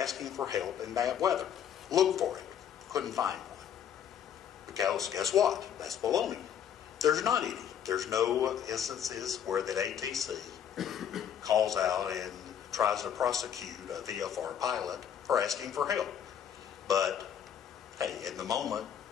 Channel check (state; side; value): quieter; right; 8.9 dB